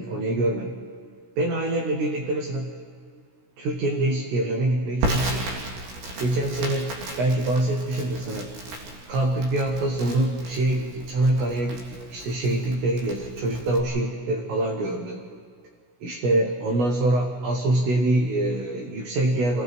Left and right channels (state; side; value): late; left; 16 ms